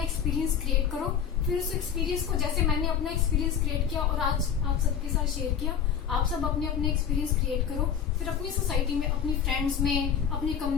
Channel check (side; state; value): right; quieter; 8.0 dB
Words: एक्सपीरियंस क्रिएट करो। फिर उस एक्सपीरियंस को, जैसे मैंने अपना एक्सपीरियंस क्रिएट किया और आज आप सबके साथ शेयर किया, आप सब अपने अपने एक्सपीरियंस क्रिएट करो। फिर अपनी सोसाइटी में, अपनी फ्रेंड्स में, अपनी